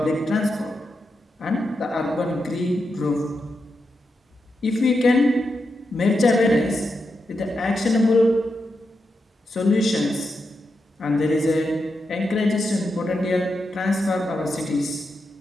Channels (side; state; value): both; normal; correlation 0.86